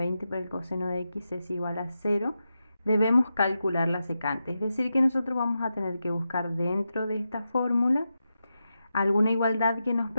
por el coseno de x es igual a 0, debemos calcular la secante. Es decir, que nosotros vamos a tener que buscar dentro de esta fórmula alguna igualdad que nos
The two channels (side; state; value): both; inverted; correlation -0.89